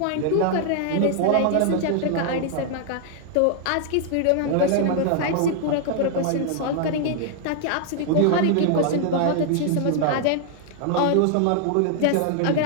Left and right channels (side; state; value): both; different; correlation 0.00